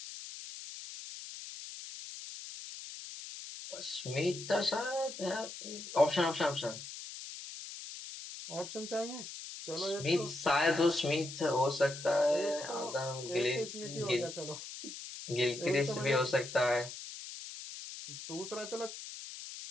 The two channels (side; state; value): left; noise; hiss, 10 dB below the sound